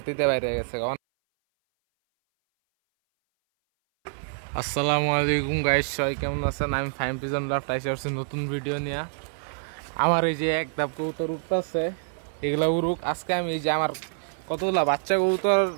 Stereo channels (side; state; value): left; silent; 58 dB below the other